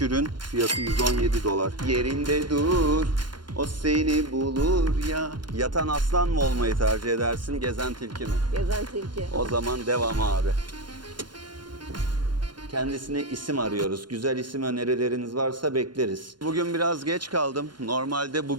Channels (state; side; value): late; left; 0.71 ms